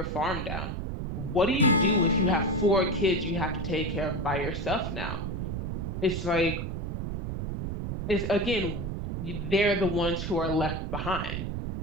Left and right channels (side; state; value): right; noise; rumble, 4 dB below the sound